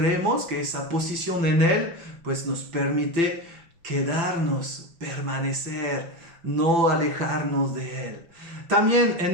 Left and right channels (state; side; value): late; left; 6.0 ms